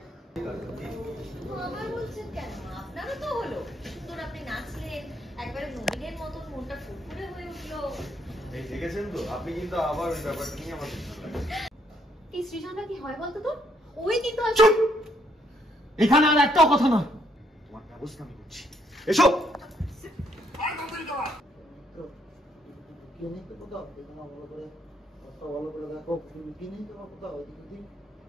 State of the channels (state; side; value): normal; both; correlation 0.70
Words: আবার বলছেন কেন? আপনারও তো হলো, সুন্দর আপনি নাচলেন, একবারে নবীনের মতন মনটা ফুরফুরে হয়ে উঠলো। এই দেখেছেন তো, আপনি কিন্তু আবার ওই ব্যাপারটা নিয়ে আমার এই সৃজনটা কি হয় বলতো তোর? ওই কিন্তু এখানে আর একটাও কথা না, তোমার ব্যবস্থা আমি করছি। এসো কিনে তো কোথাও দেখো না, ভালো করে কথা ভালো করে দেখো, কিনে তো কোথাও দিদি।